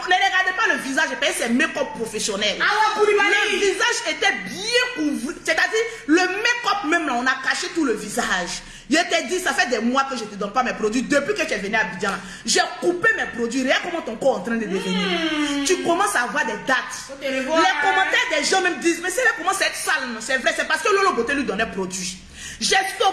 regardez pas le visage, c'est make-up professionnel. Le visage était bien couvert. C'est-à-dire, le make-up même là, on a caché tout le visage. Je t'ai dit, ça fait des mois que je ne te donne pas mes produits. Depuis que tu es venu à Abidjan, j'ai coupé mes produits. Regarde comment ton corps est en train de devenir. Tu commences à avoir des dates. Les commentaires des gens même disent, mais c'est là comment c'est sale. C'est vrai, c'est parce que Lolo Beauté lui donnait produit. J'ai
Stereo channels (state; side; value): identical; both; correlation 1.00